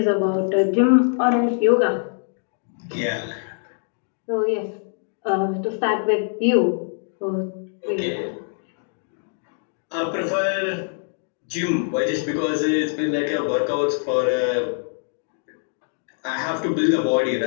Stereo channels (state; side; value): silent; right; 60 dB below the other